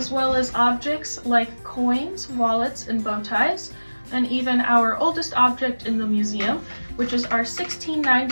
well as objects like coins, wallets, and bow ties, and even our oldest object in the museum, which is our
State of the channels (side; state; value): both; inverted; correlation -1.00